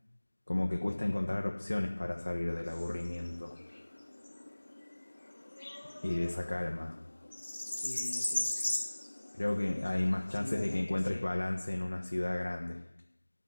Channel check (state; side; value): inverted; both; correlation -1.00